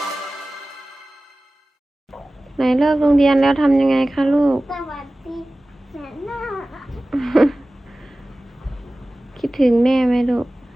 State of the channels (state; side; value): normal; both; correlation 0.97